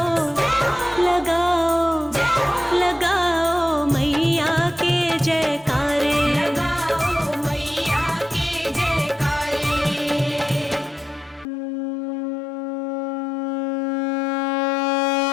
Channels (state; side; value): drops out; right; at 11.5 s